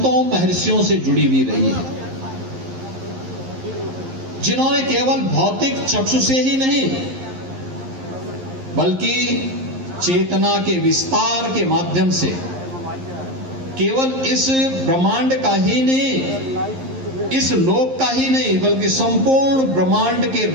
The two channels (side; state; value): left; late; 11 ms